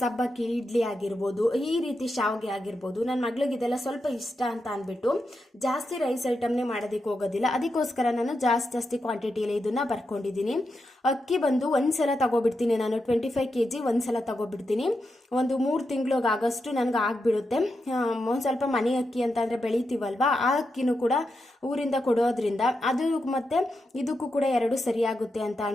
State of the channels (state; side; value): normal; both; correlation 0.87